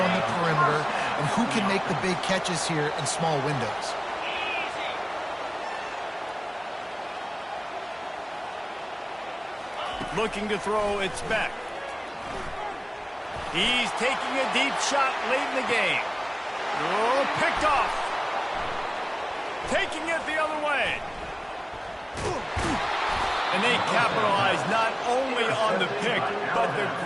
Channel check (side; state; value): both; identical; correlation 1.00